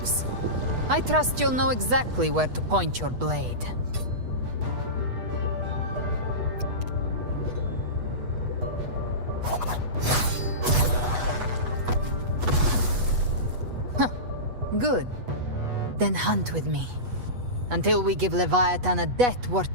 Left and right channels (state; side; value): late; left; 8.2 ms